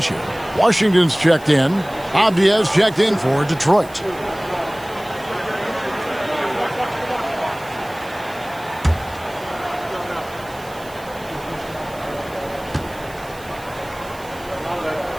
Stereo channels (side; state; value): right; noise; hiss, 21 dB below the sound